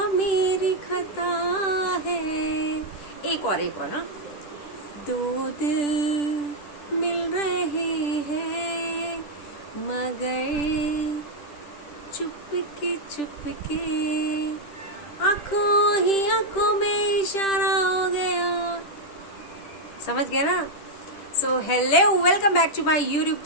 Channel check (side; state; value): right; late; 10 ms